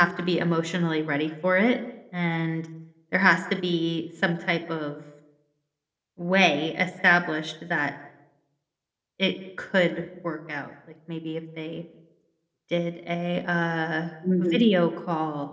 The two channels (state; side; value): identical; both; correlation 1.00